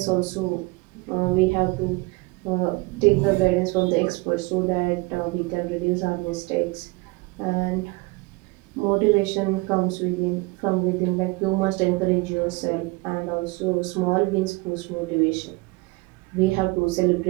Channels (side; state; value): left; quieter; 24.8 dB